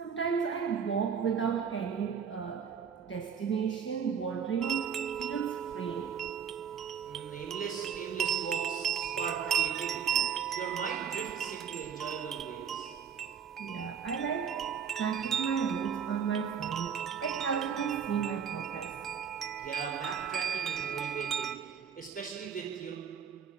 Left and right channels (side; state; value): left; quieter; 7.3 dB